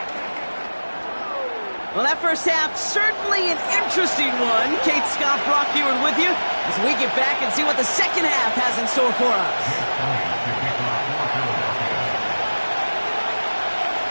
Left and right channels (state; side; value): inverted; both; correlation -1.00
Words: Well, that first half, certainly an interesting one. Kate Scott, Brock Eward with you as we get back and see what the second half has in store for us.